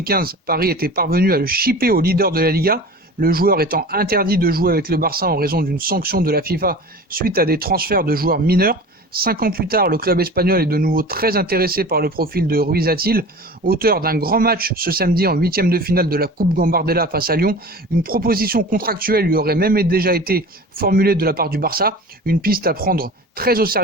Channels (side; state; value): both; normal; correlation 0.37